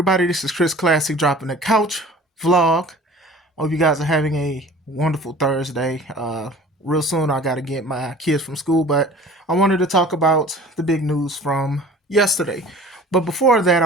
This is Chris Classic dropping the couch vlog. Hope you guys are having a wonderful Thursday. Real soon, I got to get my kids from school, but I wanted to talk about the big news from yesterday. But before that, I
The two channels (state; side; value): normal; both; correlation 0.44